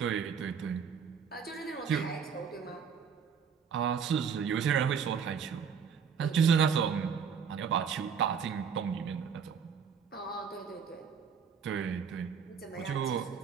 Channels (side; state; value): left; quieter; 6.8 dB